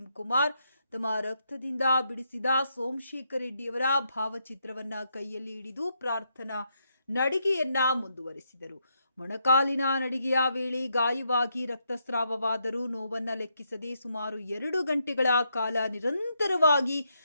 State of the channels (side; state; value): both; inverted; correlation -0.79